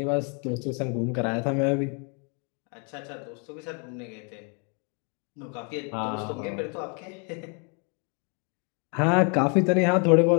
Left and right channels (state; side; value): quieter; right; 37.7 dB